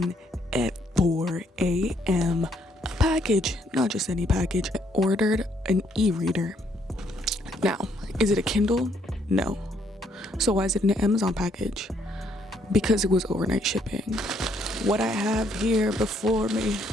at 4 a.m. A package, not just any package. I ordered an e-reader. Now, is it a Kindle? No. So why is it an Amazon package? Because it was overnight shipping. What I have here before me,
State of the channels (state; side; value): normal; both; correlation 0.70